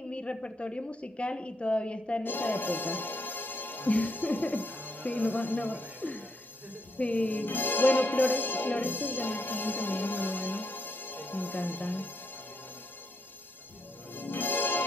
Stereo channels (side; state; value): both; normal; correlation 0.77